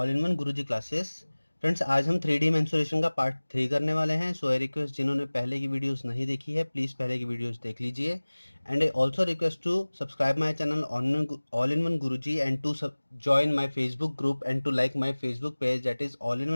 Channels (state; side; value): inverted; both; correlation -1.00